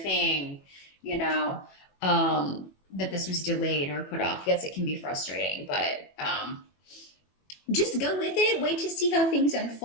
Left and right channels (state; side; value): late; right; 21 ms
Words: that this was delayed or put off. Yes, it can be frustrating, but just go with it. Wait to see how things